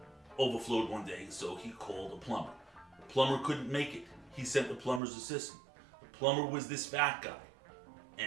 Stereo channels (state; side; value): drops out; left; at 5.0 s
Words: overflowed one day, so he called a plumber. The plumber couldn't make it. He sent the plumber's assistant. The plumber was this fat guy.